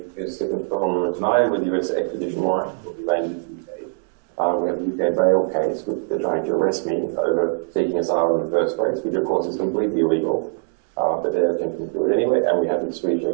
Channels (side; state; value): left; silent; digital silence